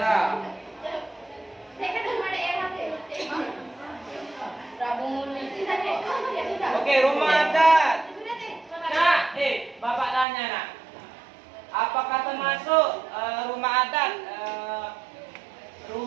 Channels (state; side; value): drops out; left; at 10.2 s